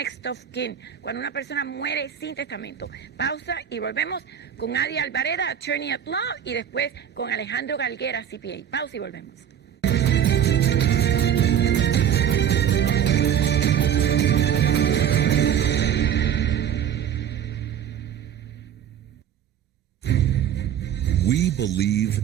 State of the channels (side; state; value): left; quieter; 9.6 dB